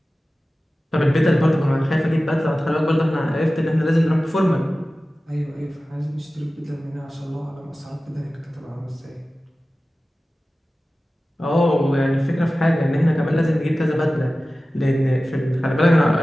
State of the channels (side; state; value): both; normal; correlation 0.96